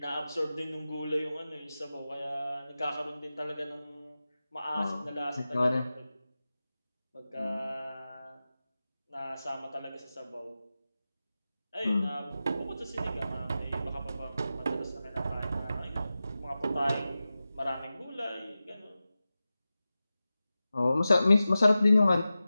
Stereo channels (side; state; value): both; inverted; correlation -0.94